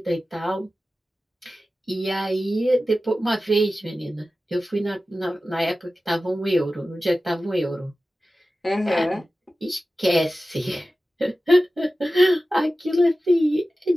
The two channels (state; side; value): normal; both; correlation 0.95